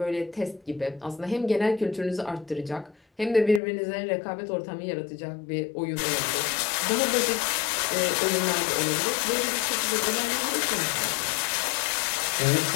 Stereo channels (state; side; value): drops out; right; at 3.6 s